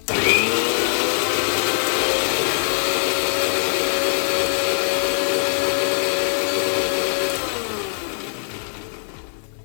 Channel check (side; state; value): right; silent; digital silence